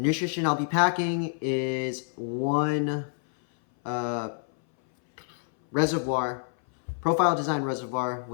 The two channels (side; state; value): right; silent; 58 dB below the other